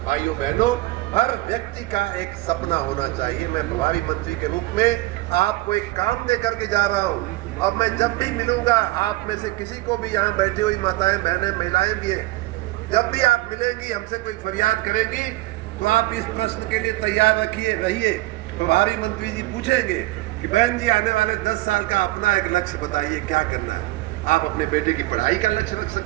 भाइयों बहनों, हर व्यक्ति का एक सपना होना चाहिए। मैं प्रभारी मंत्री के रूप में आपको एक काम दे करके जा रहा हूँ और मैं जब भी मिलूंगा आप में से किसी को भी, यहाँ बैठी हुई माताएं, बहनें, महिलाएं भी हैं, जब भी आप मिलेंगी, हमसे कोई फरियाद करेंगी तो आप इस प्रश्न के लिए तैयार रहिए। प्रभारी मंत्री जी पूछेंगे कि बहन जी आने वाले 10 साल का अपना एक लक्ष्य बताइए, क्या करना है। आप अपने बेटे की पढ़ाई का लक्ष्य रख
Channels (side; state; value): left; quieter; 19.1 dB